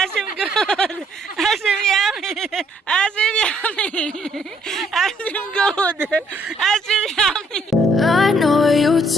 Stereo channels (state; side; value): normal; both; correlation 0.67